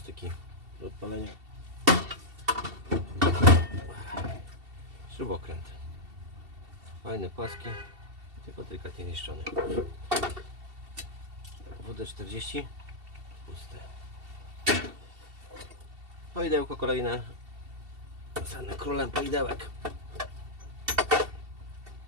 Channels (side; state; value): left; late; 2.7 ms